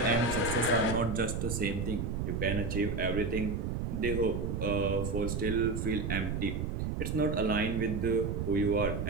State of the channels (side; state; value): right; noise; rumble, 2 dB below the sound